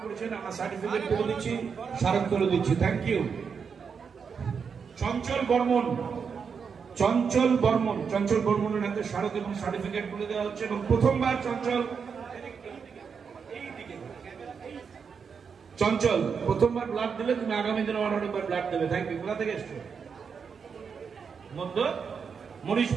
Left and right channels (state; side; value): quieter; left; 6.2 dB